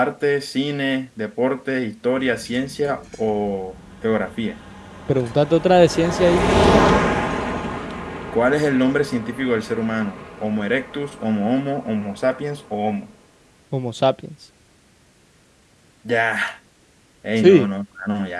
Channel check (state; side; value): identical; both; correlation 1.00